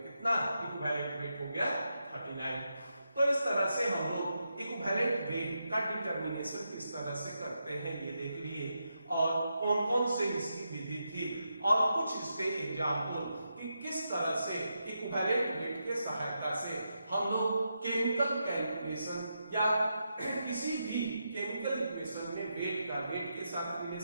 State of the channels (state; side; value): inverted; both; correlation -0.85